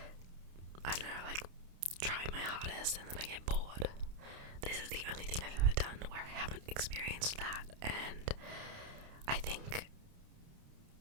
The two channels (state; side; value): late; left; 29 ms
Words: don't know, like try my hardest and then I get bored. This is the only thing I've ever done where I haven't experienced that, and I think